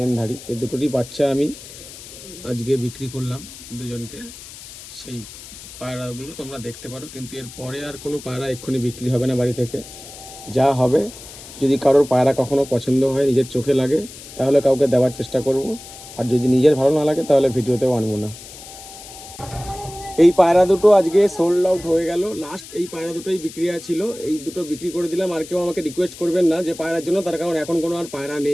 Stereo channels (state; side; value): noise; left; hiss, 15 dB below the sound